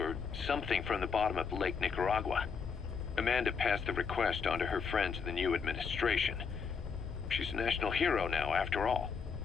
something from the bottom of Lake Nicaragua. Amanda passed the request on to her friends in the new administration. She's a national hero now, after all.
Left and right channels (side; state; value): right; quieter; 5.8 dB